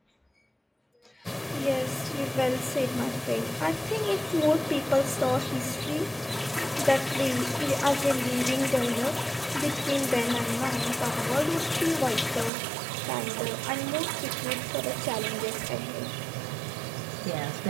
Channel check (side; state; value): left; drops out; at 12.5 s